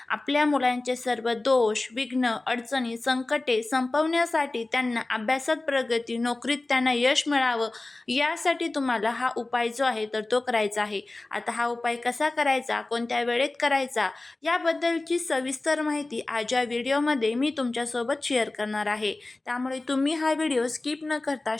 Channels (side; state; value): right; quieter; 3.0 dB